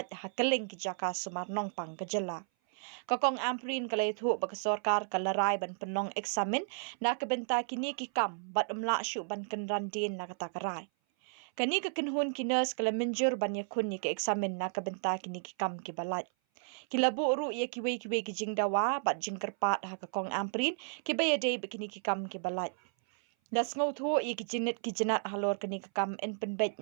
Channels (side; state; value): left; silent; 56 dB below the other